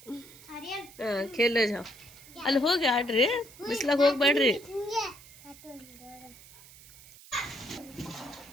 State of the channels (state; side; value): noise; right; hiss, 21 dB below the sound